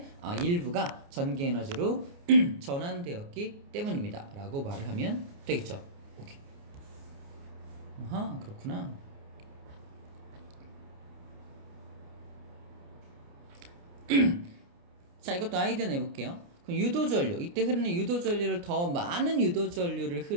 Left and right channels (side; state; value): left; late; 29 ms